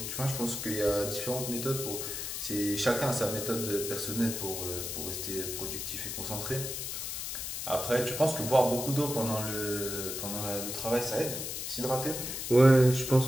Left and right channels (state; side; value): noise; left; hiss, 5 dB below the sound